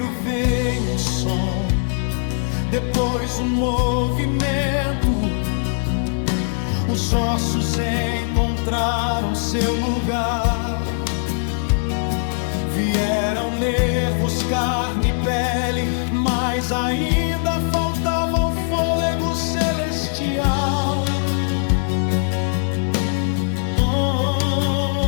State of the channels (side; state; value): right; silent; 63 dB below the other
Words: veio o som, depois o movimento. Os ossos encontraram seu lugar. Vieram nervos, carne e pele, mas ainda faltava o fôlego celestial.